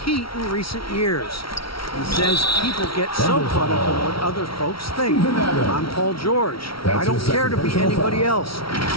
heat in recent years. He says people get so caught up in what other folks think. I'm Paul George. I don't care to be anybody else.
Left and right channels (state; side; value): late; right; 0.75 ms